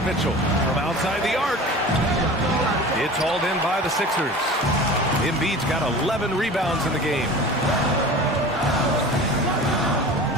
Mitchell. From outside the arc. It's hauled in by the Sixers. Embiid's got 11 rebounds in the game.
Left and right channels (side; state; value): both; normal; correlation 0.37